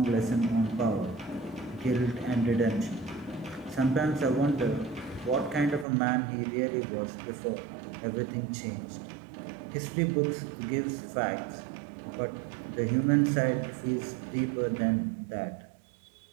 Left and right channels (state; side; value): drops out; left; at 5.9 s